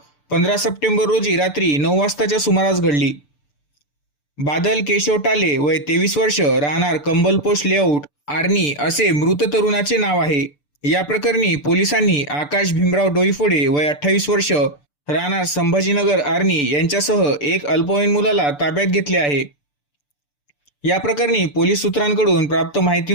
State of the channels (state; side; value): late; right; 6.8 ms